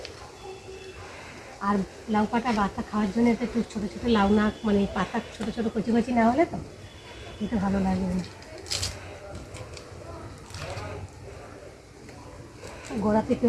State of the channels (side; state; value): both; identical; correlation 1.00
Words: আর লাউ পাতা বাতা খাওয়ার জন্য এটা একটু ছোটো ছোটো লাউ না, মানে পাতা ছোটো ছোটো কচি কচি না হলে তো খেতে ভালো লাগে না। গোড়া